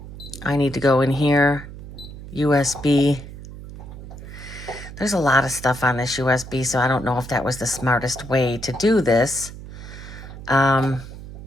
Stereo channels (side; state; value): right; noise; hum, 13 dB below the sound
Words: need to go in here, USB. There's a lot of stuff on this USB, so I don't know if that was the smartest way to do this.